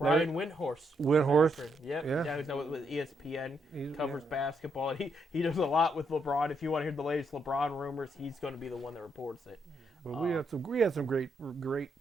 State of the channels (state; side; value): normal; both; correlation 0.77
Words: Windhorst. Windhorst, Yep. yeah. Yeah, who's now with ESPN. He's- Covers yeah. basketball. And he does a lot with LeBron. If you want to hear the latest LeBron rumors, he's going to be the one that reports it. But we had some great